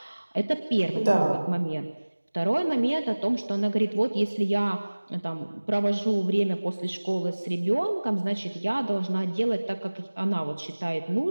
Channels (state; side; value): inverted; both; correlation -1.00